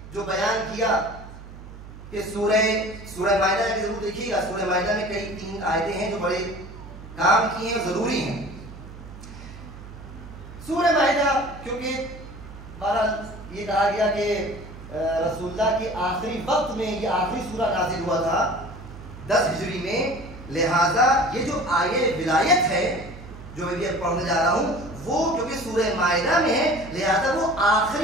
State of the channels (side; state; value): right; noise; hum, 15 dB below the sound